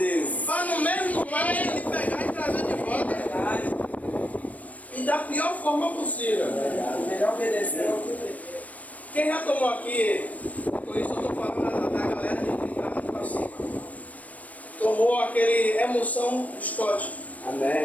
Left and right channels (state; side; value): late; right; 0.073 ms